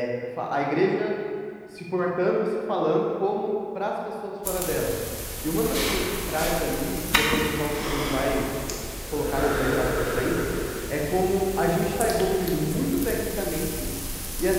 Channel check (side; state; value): both; identical; correlation 1.00